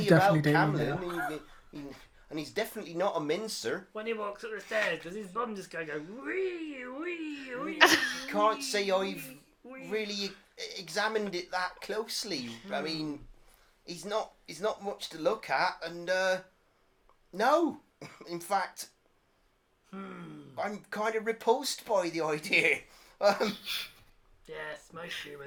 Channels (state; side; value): identical; both; correlation 1.00